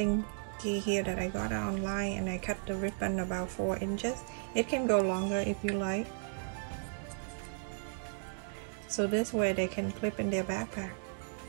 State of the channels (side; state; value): left; silent; digital silence